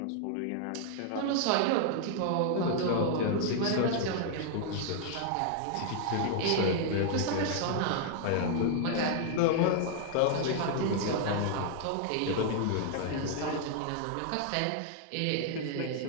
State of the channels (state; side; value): different; both; correlation 0.00